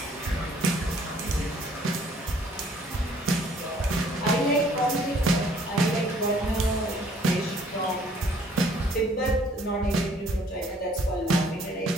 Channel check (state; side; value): normal; both; correlation 0.60